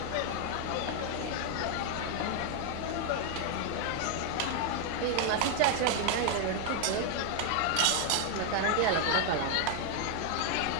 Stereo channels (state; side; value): different; both; correlation 0.00